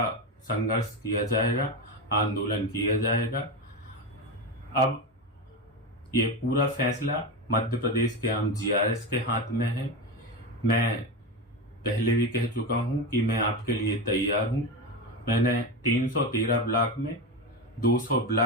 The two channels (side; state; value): both; normal; correlation 0.17